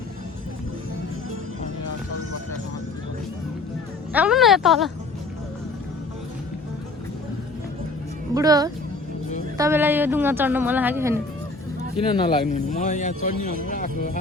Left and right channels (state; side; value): quieter; right; 3.3 dB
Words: आउनु न तल बुढो तपाईँलाई यो डुङ्गा चढ्न मन लाग्यो छैन किन नलाग्नु म यहाँ चढ्ने